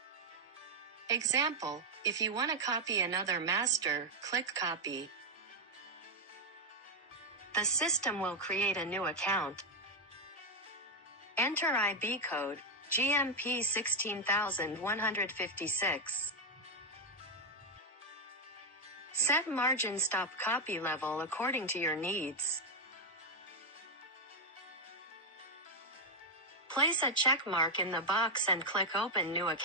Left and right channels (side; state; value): both; normal; correlation 0.03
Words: Example, if you want to copy another master, click Copy. The system will create a new account. Enter IB code, GMP 16156. Set margin stop copy level according to your needs. Place a check mark in the box and click Open New